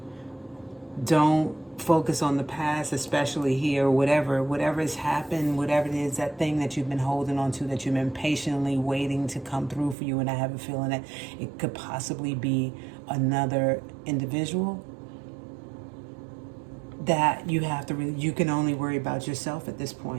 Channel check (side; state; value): left; drops out; at 10.0 s